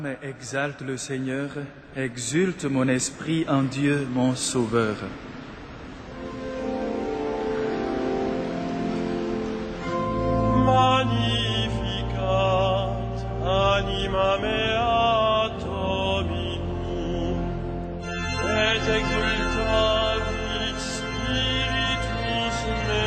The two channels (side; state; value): both; identical; correlation 1.00